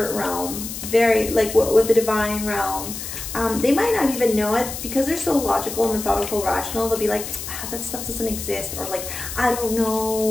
realm, very like with the divine realm. They might not even know it because they're so logical and methodical, rational. They'll be like, that stuff doesn't exist, or like, I don't know,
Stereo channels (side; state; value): left; noise; hiss, 8 dB below the sound